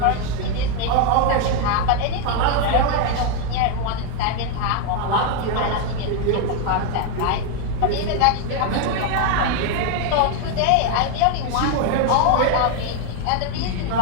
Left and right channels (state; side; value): different; both; correlation 0.01